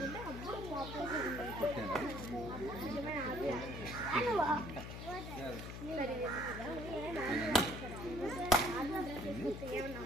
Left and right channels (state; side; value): noise; left; hum, 8 dB below the sound